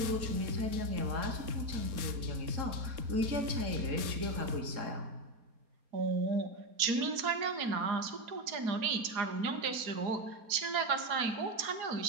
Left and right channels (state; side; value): late; left; 4.3 ms